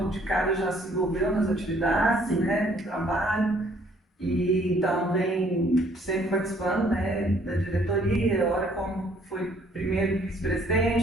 de cara já se envolveu nas atividades, né, no trabalho, e então vem sempre participando, né, da diretoria, olha como foi primeiro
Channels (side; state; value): both; normal; correlation 0.62